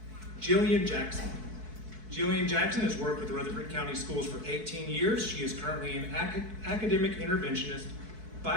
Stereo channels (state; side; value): late; left; 4.6 ms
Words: Jillian Jackson. Jillian Jackson has worked with Rutherford County Schools for 18 years. She is currently an academic interventionist,